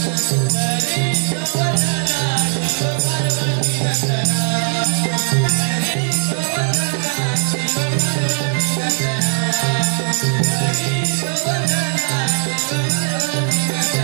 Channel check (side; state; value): left; silent; digital silence